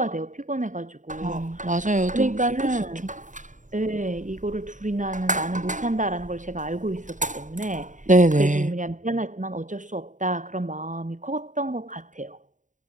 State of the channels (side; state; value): left; late; 0.37 ms